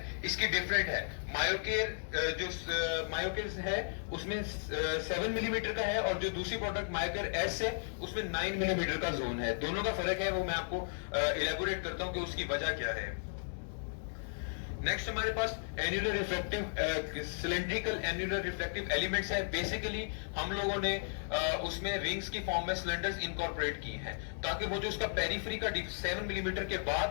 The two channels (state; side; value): silent; right; digital silence